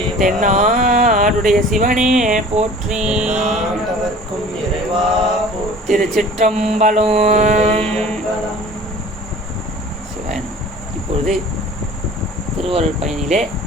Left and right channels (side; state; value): both; normal; correlation 0.45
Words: தென்னாடுடைய சிவனே போற்றி. திருச்சிற்றம்பலம். சிவன். இப்பொழுது திருவருள் பயனிலே